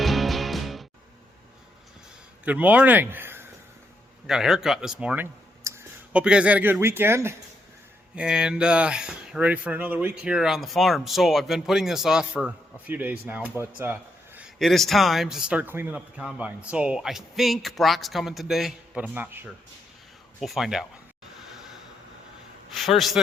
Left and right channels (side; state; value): both; normal; correlation 0.79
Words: Good morning. I got a haircut this morning. Hope you guys had a good weekend and ready for another week here on the farm. So I've been putting this off for a few days now, but it is time to start cleaning up the combine. So I think Brock's coming today, but I'm not sure. We'll find out. First